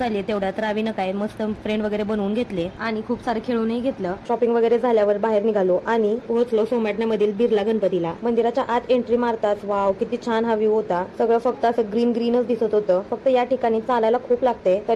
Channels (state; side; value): identical; both; correlation 1.00